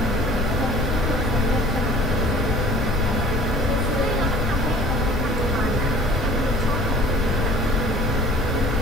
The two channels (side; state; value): left; noise; rumble, 1 dB below the sound